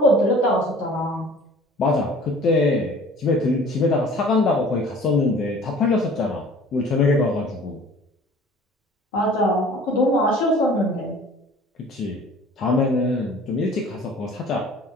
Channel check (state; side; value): normal; both; correlation 0.48